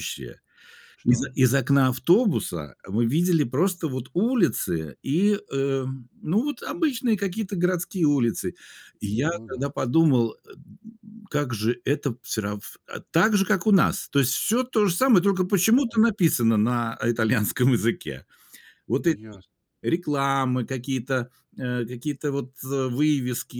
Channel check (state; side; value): identical; both; correlation 1.00